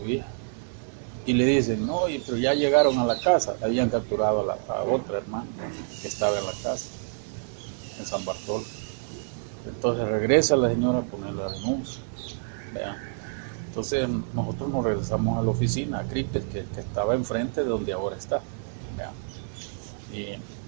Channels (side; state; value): left; silent; digital silence